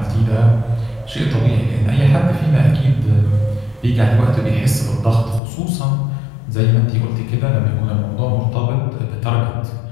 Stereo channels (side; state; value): right; drops out; at 5.4 s